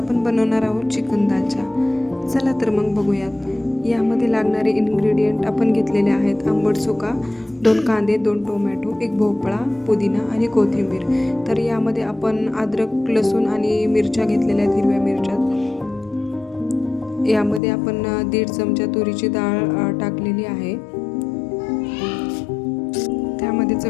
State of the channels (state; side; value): drops out; right; at 17.6 s